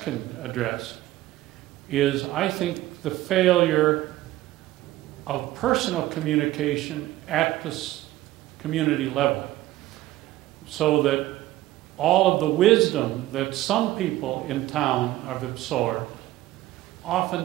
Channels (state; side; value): quieter; left; 15.9 dB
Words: can address, is I think the failure of personal communication at the community level, so that all of the wisdom that some people in town have absorbed